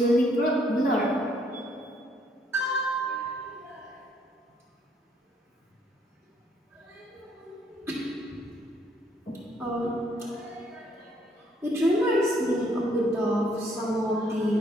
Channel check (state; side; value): normal; both; correlation 0.67